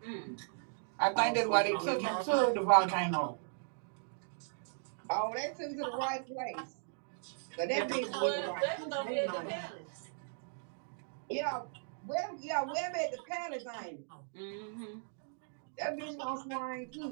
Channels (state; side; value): silent; left; digital silence